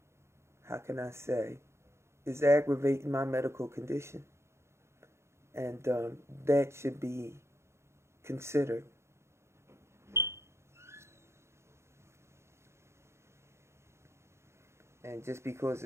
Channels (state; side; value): late; left; 0.13 ms